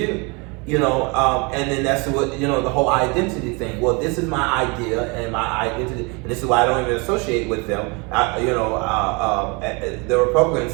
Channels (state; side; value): quieter; left; 29.8 dB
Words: And then that's what, the whole identity thing. Well, this is my idea and my identity, and this is why I don't even associate with them. The Republican